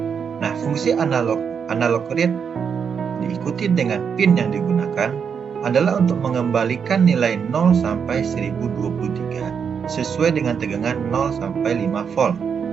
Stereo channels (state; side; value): quieter; left; 6.8 dB